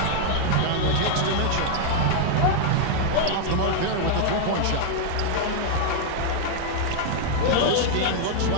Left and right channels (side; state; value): both; different; correlation -0.01